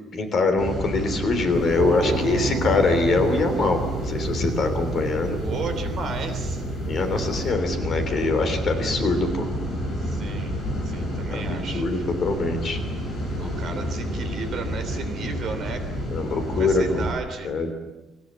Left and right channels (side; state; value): both; normal; correlation 0.68